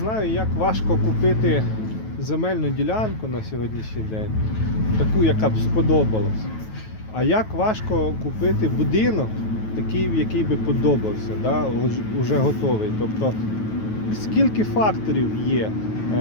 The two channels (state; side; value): late; right; 9.2 ms